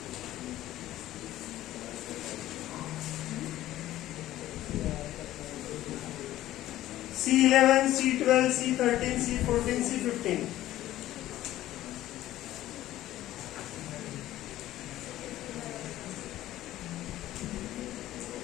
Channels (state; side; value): quieter; right; 14.4 dB